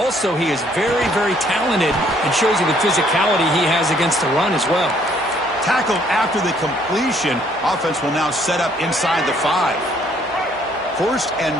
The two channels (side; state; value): both; normal; correlation 0.64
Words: he is very, very talented and shows you the physicality he has against the run as well. Tackled after the completion. Offense will now set up inside the 5. First and